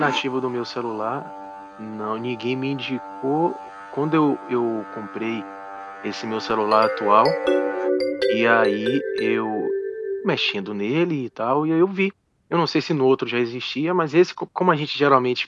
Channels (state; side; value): identical; both; correlation 1.00